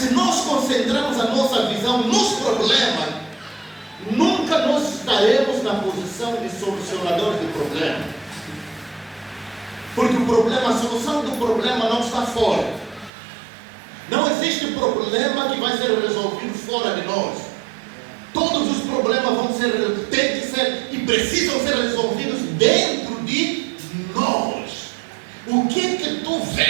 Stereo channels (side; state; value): left; drops out; at 13.1 s